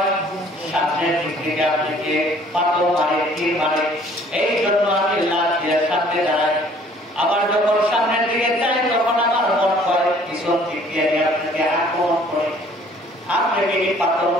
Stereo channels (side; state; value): both; normal; correlation 0.56